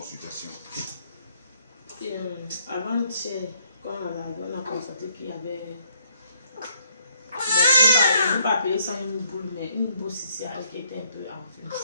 Avant-hier, quand on a constaté qu'il y avait... Bon, je ne peux pas appeler ça une boule, mais une boule céciale qui était un peu enflée.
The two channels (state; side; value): inverted; both; correlation -0.69